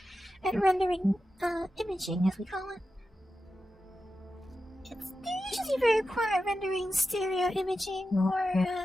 at rendering imaging, as we call it. They're usually very poor at rendering stereo imaging or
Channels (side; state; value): both; normal; correlation 0.92